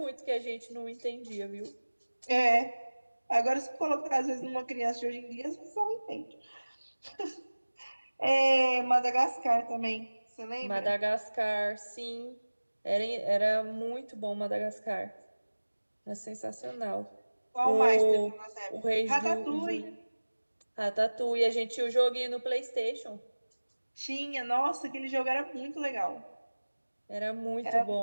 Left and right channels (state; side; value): inverted; both; correlation -1.00